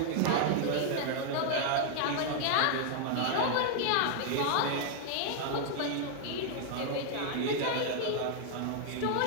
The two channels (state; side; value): different; both; correlation 0.00